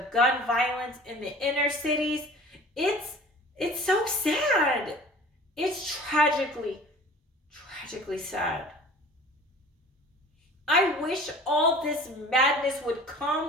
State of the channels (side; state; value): both; normal; correlation 0.44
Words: gun violence in the inner cities, it's so sad. It's tragically sad. I wish all this madness would